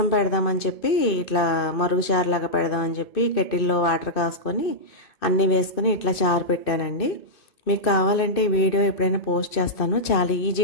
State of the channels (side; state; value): right; late; 2.5 ms